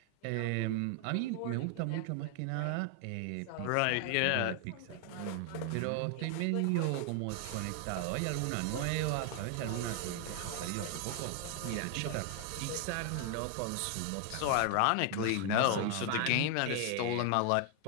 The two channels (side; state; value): both; different; correlation 0.00